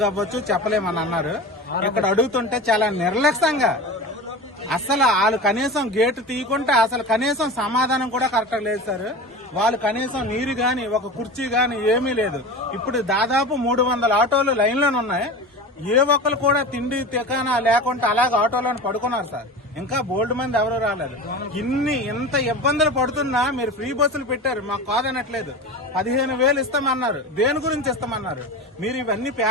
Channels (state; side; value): normal; both; correlation 0.30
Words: అవ్వచ్చు, చెప్పలేమని అన్నారు. ఇక్కడ అడుగుతుంటే చాలా నిర్లక్ష్యంగా, అసలు వాళ్ళు కనీసం గేటు తీయకుంటే అసలు కనీసం సమాధానం కూడా కరెక్ట్ లేదు సార్. వాళ్ళు కనీసం నీరు గాని, ఒక కుర్చీ గాని ఏమీ లేదు. ఇప్పుడు దాదాపు 300 ఆటోలు లైన్లోనే ఉన్నాయి. ఏ ఒక్కరు కూడా తిండి తికానా లేకుండా అలాగే ఆటోలను పడుకున్నారు సార్. ఇంకా బోల్డ్ మంది ఎవరు రాలేదు. ఇంత ఇబ్బందులు పడుతున్నా మీరు ఫ్రీ బస్సులు పెట్టారు, మాకు కాదనట్లేదు. 15,000 ఇస్తామన్నారు. దేని గురించి ఇస్తామన్నారు? మీరు ఇవన్నీ